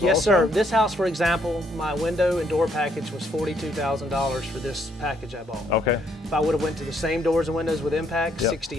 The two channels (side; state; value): both; normal; correlation 0.70